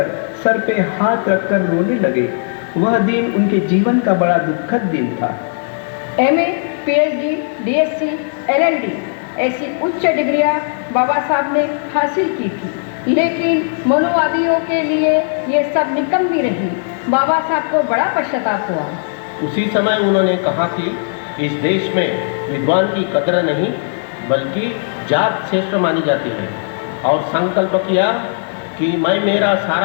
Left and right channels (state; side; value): silent; right; 68 dB below the other